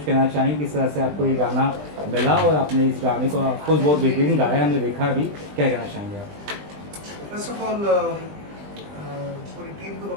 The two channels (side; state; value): left; late; 20 ms